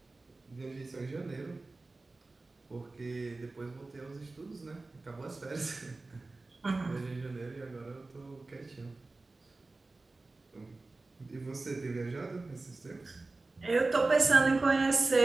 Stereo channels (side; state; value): left; quieter; 3.4 dB